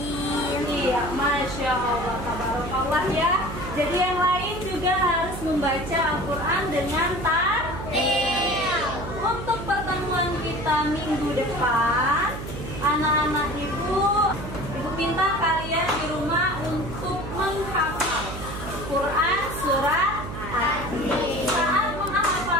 Iya, Masya Allah, tabarakallah ya. Jadi yang lain juga harus membaca Al-Quran dengan tartil. Untuk pertemuan kita minggu depan, anak-anak ibu minta kalian di rumah untuk menghafal Quran surat Atin. Saat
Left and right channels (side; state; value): right; noise; hum, 8 dB below the sound